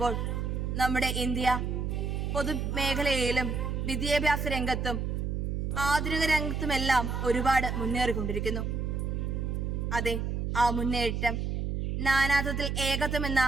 നമ്മുടെ ഇന്ത്യ പൊതുമേഖലയിലും വിദ്യാഭ്യാസ രംഗത്തും ആധുനിക രംഗത്തുമെല്ലാം ഒരുപാട് മുന്നേറിക്കൊണ്ടിരിക്കുന്നു. അതെ, ആ മുന്നേറ്റം നാനാത്വത്തിൽ ഏകത്വം എന്ന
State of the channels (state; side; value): noise; right; hum, 1 dB below the sound